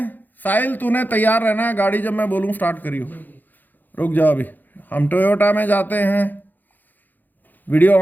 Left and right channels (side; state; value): right; late; 0.086 ms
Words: साहिल तूने तैयार रहना है, गाड़ी जब मैं बोलूं स्टार्ट करियो। रुक जाओ अभी। हम टोयोटा में जाते हैं। वीडियो